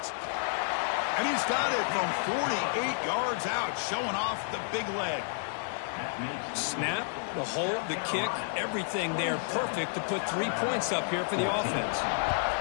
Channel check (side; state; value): right; silent; digital silence